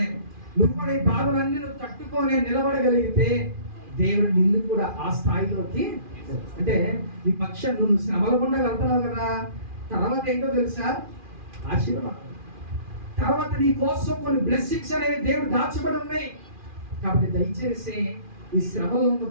నువ్వు కూడా ఈ బాధలన్నీ నువ్వు తట్టుకొని నిలబడగలిగితే దేవుడు నిన్ను కూడా ఆ స్థాయిలోకి, అంటే నీ పక్షం నువ్వు శ్రమల గుండా వెళ్తున్నావు కదా, తర్వాత ఏంటో తెలుసా, ఆశీర్వాదం. తర్వాత నీ కోసం కొన్ని బ్లెస్సింగ్స్ అనేవి దేవుడు దాచబడి ఉన్నాయి. కాబట్టి దయచేసి ఈ శ్రమలో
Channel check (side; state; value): left; late; 2.4 ms